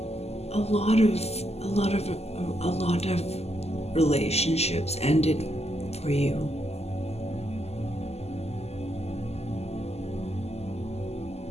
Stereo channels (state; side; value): late; right; 0.30 ms